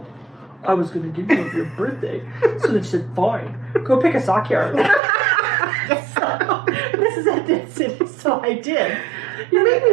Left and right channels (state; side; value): drops out; left; at 5.0 s